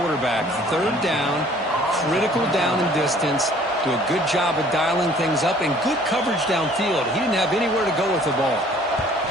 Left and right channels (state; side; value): normal; both; correlation 0.55